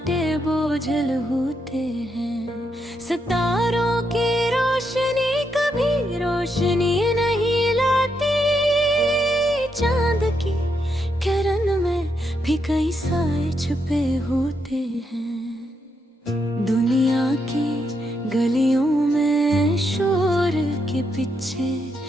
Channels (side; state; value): both; normal; correlation 0.80